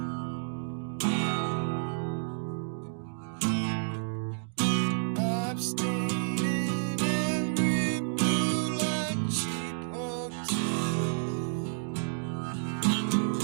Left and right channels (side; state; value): left; silent; digital silence